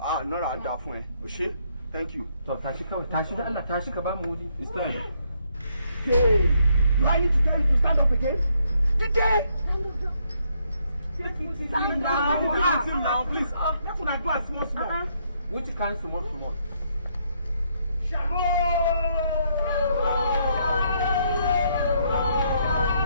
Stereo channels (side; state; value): both; inverted; correlation -0.73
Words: Nora Adafun. Oshe. Thank you. So, Tashi Kabamudi. It's time. Hey, do I need to tell you to stand up again? Today! Stand down. Now, please. That's what I do at small. Which kind small?